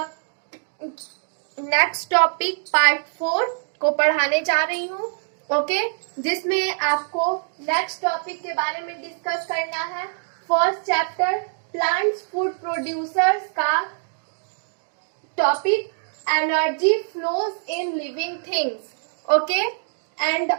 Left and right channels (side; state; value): left; silent; digital silence